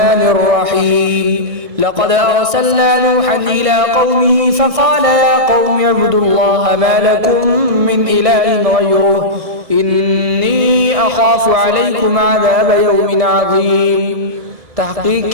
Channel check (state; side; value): late; left; 1.6 ms